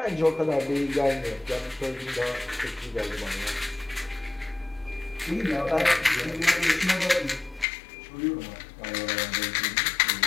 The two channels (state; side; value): drops out; right; at 7.7 s